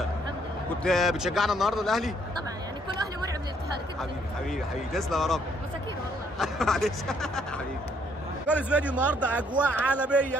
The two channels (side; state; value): both; normal; correlation 0.67